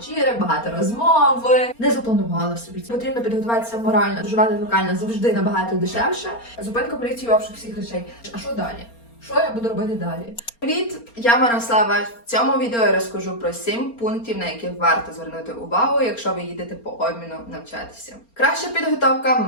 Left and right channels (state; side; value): late; right; 4.3 ms